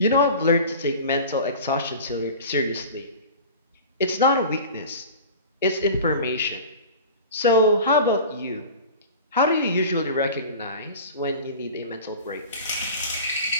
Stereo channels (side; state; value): both; inverted; correlation -0.37